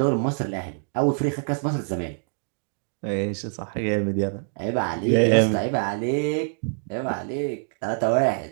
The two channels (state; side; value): silent; left; digital silence